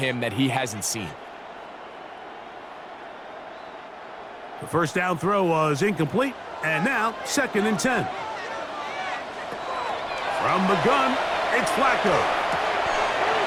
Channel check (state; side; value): identical; both; correlation 1.00